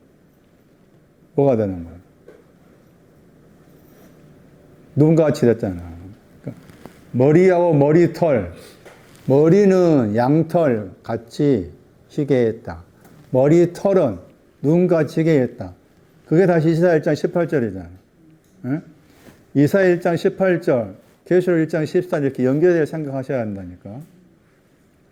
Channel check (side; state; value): both; identical; correlation 1.00